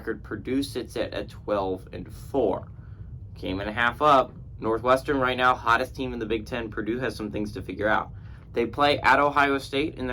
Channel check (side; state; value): both; identical; correlation 1.00